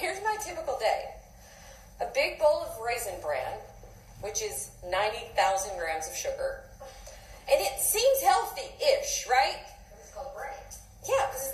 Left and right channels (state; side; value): identical; both; correlation 1.00